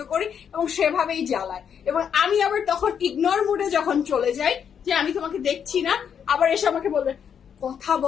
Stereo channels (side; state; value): right; quieter; 7.8 dB